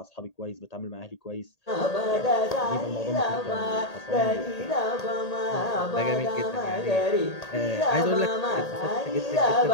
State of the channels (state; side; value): late; right; 1.8 ms